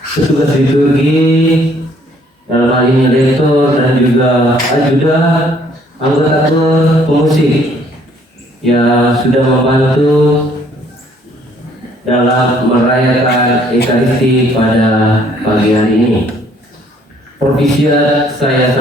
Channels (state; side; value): normal; both; correlation 0.63